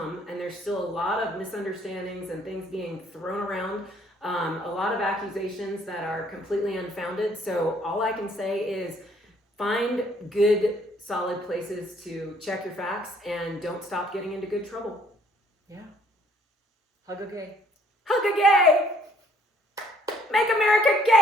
and there's still a lot of misunderstandings and things being thrown around, a lot of accusations that are completely unfounded. So all I can say is find good, solid places to check your facts, and don't stop getting into good trouble. Yeah. Hug a gay. Hug a gay! Make America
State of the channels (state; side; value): normal; both; correlation 0.62